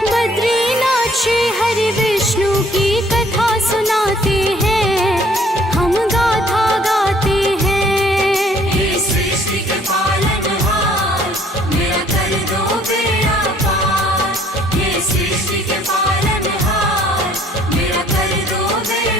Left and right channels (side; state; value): both; normal; correlation 0.59